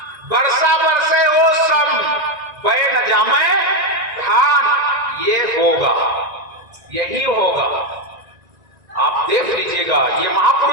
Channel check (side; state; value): left; late; 1.9 ms